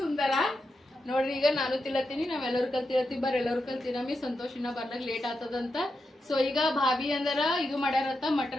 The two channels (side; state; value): both; normal; correlation 0.87